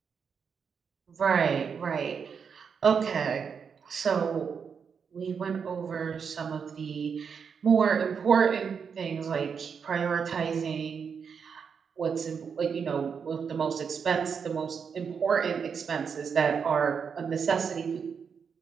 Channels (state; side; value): quieter; left; 6.4 dB